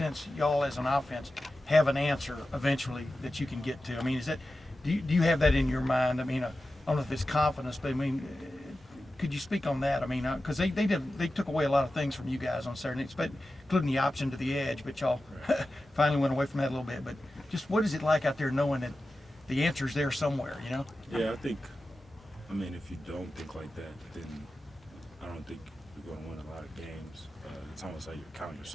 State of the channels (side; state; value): both; normal; correlation 0.93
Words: y'all as an offense have an answer eventually that you can get to? I mean, is that do you have that in your mind? I mean, I don't know if it's confidence, but I mean, could you speak on that? I mean, because they took away a lot of things from you guys on Saturday, including the option to the edge, but y'all finally went away from that a little bit. But just what is it like out there knowing that the answer's there somewhere? Yeah, I mean, if you don't think like that, then I don't think you're going to win a lot of games. It's almost like you're counting